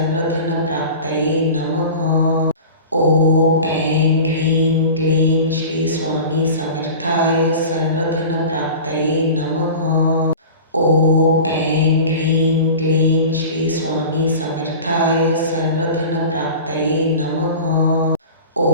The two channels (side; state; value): both; inverted; correlation -0.36